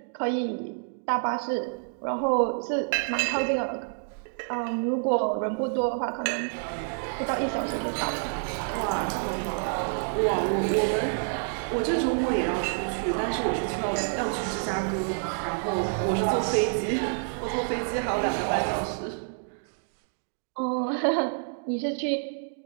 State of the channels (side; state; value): left; silent; 59 dB below the other